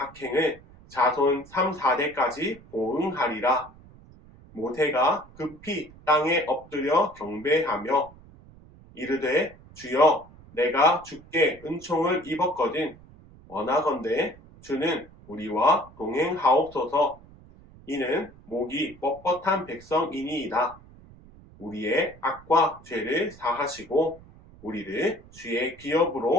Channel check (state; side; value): noise; right; rumble, 23 dB below the sound